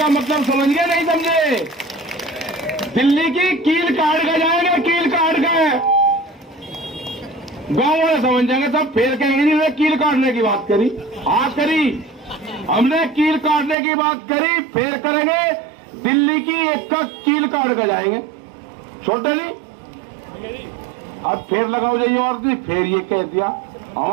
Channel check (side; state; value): left; drops out; at 13.8 s